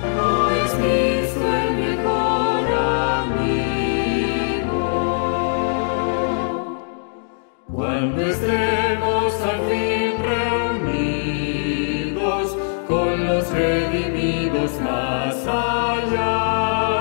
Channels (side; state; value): right; silent; digital silence